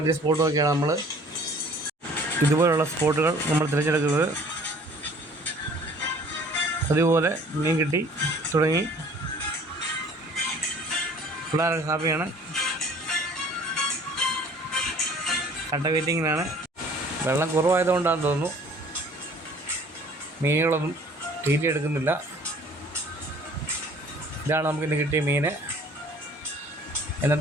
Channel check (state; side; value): normal; both; correlation 0.52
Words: സ്പോട്ടുമൊക്കെയാണ് നമ്മൾ ഇതുപോലുള്ള സ്പോട്ടുകൾ നമ്മൾ തിരഞ്ഞെടുക്കുന്നത്. അതുപോലെ മീൻ കിട്ടി തുടങ്ങി, പിള്ളേരൊക്കെ ഹാപ്പിയാണ്. കട്ട വെയിറ്റിങ്ങിനാണ്. വെള്ളം കുറവായതുകൊണ്ടാണെന്ന് തോന്നുന്നു മീനുകളൊന്നും തീറ്റ എടുക്കുന്നില്ല. ഇതാണ് നമുക്കിന്ന് കിട്ടിയ മീൻ.